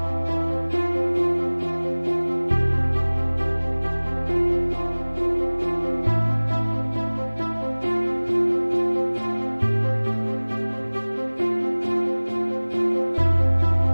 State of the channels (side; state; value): both; inverted; correlation -1.00